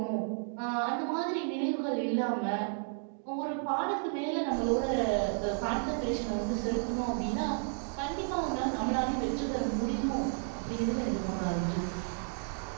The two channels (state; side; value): silent; left; 56 dB below the other